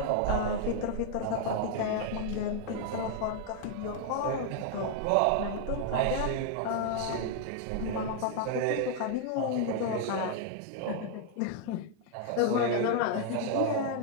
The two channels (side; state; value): both; different; correlation 0.00